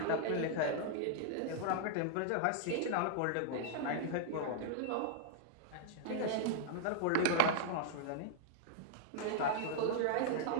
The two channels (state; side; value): different; both; correlation -0.01